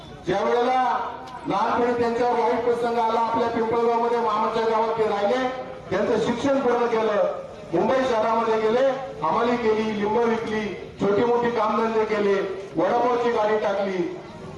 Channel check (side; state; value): both; identical; correlation 1.00